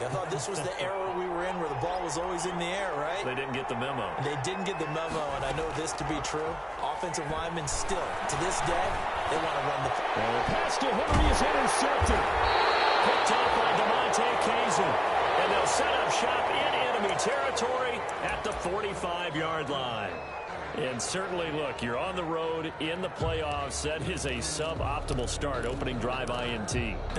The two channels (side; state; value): both; identical; correlation 1.00